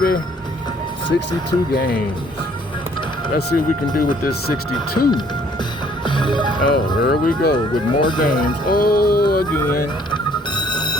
62 games. Let's see what we can do with this 62. Oh, here we go with more games. Oh, again.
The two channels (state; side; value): normal; both; correlation 0.61